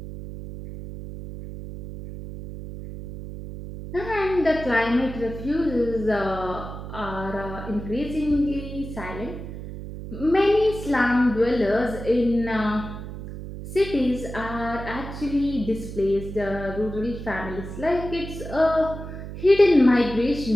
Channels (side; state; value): right; noise; hum, 10 dB below the sound